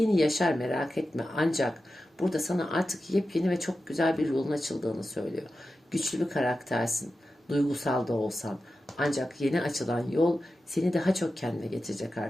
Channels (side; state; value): both; normal; correlation 0.92